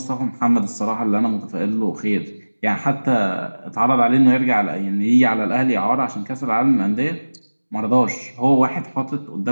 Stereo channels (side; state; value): both; inverted; correlation -1.00